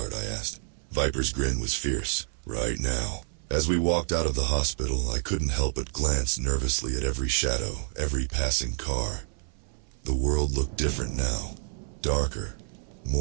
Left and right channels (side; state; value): left; silent; 57 dB below the other